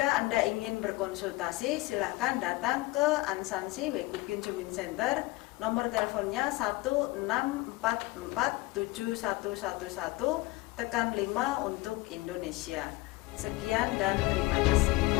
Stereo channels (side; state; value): right; quieter; 20.6 dB